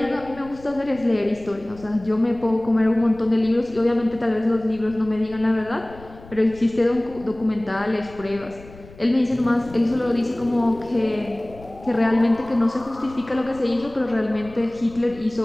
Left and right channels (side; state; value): left; noise; rumble, 20 dB below the sound